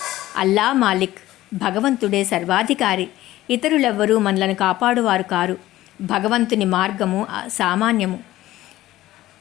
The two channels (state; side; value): quieter; right; 15.5 dB